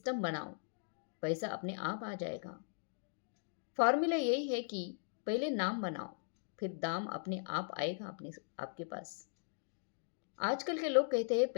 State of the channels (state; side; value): silent; right; digital silence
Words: बनाओ, पैसा अपने आप आ जाएगा। फॉर्मूला यही है कि पहले नाम बनाओ, फिर दाम अपने आप आएगा आपके पास। आजकल के लोग कहते हैं